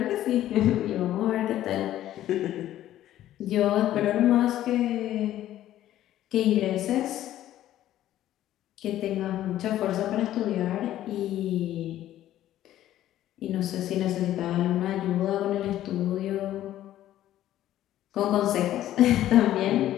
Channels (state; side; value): quieter; right; 13.0 dB